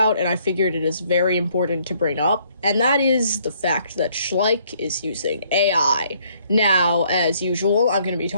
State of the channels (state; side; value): inverted; both; correlation -0.66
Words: and I figured it is very important to bring up, and that is the fact that Schleich is using AI. Now, as usual, I'm going to be